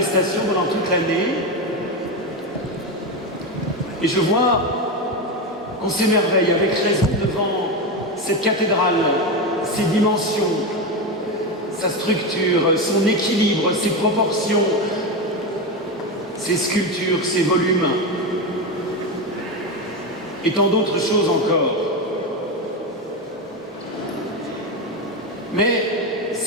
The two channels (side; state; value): both; normal; correlation 0.15